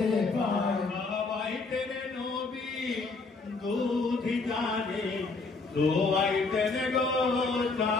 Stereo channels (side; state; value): right; quieter; 3.9 dB